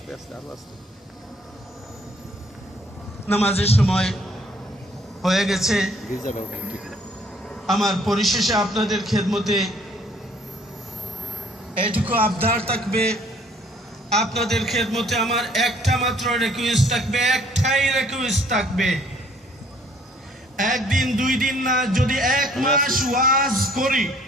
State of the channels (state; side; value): normal; both; correlation 0.60